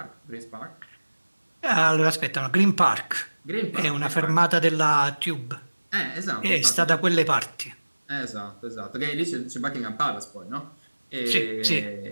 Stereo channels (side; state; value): both; inverted; correlation -1.00